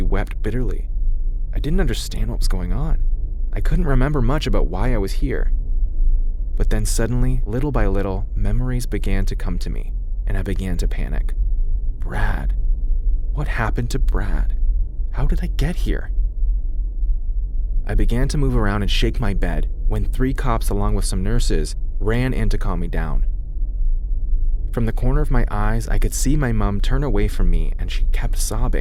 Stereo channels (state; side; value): identical; both; correlation 1.00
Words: wept bitterly. I didn't understand what was going on. I couldn't remember much about why I was here. But then suddenly, little by little, memories began to come to me, and I began to panic. Brad. What happened to Brad? How did I get here? I began to move around and shake my bed when 3 cops, along with some nurses, ran in to calm me down. From the corner of my eyes, I could see my mom turn away from me, and she kept